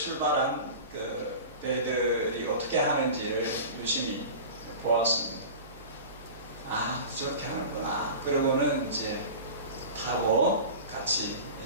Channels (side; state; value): both; inverted; correlation -0.34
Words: 그 배들이 어떻게 하는지를 유심히 보았습니다. 아, 저렇게 하는구나. 그러고는 이제 타고 같이